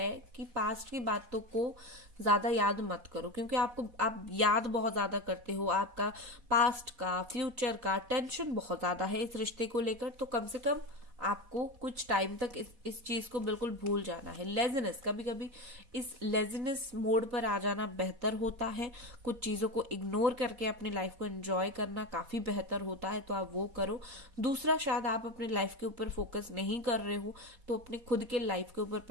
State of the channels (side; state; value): left; late; 4.1 ms